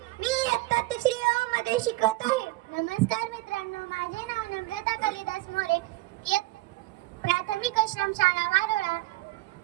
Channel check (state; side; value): quieter; left; 19.6 dB